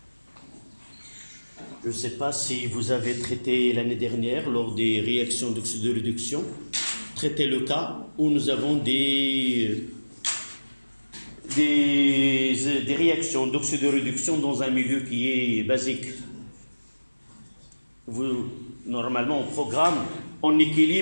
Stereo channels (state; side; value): inverted; both; correlation -1.00